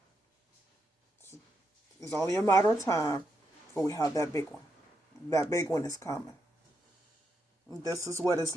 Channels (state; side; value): normal; both; correlation 0.81